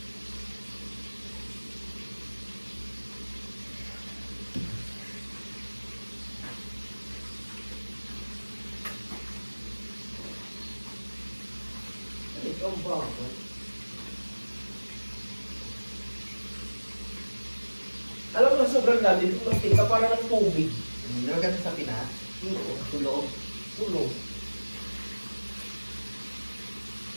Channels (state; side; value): inverted; both; correlation -1.00